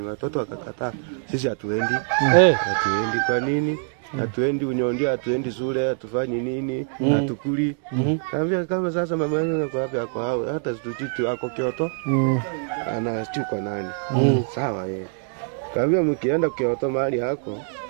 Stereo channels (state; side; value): silent; left; 63 dB below the other